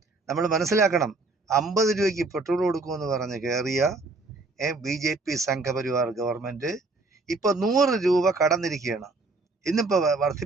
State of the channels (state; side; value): quieter; left; 3.4 dB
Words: നമ്മൾ മനസ്സിലാക്കണം, 50 രൂപയ്ക്ക് പെട്രോൾ കൊടുക്കുമെന്ന് പറഞ്ഞ് കയറിയ BJP സംഘപരിവാർ ഗവൺമെൻറ് ഇപ്പോൾ 100 രൂപ കടന്നിരിക്കുകയാണ്. ഇന്നിപ്പോൾ